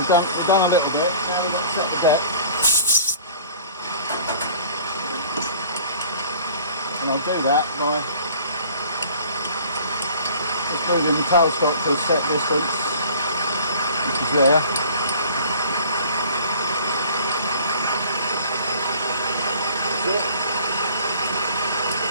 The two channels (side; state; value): both; inverted; correlation -0.48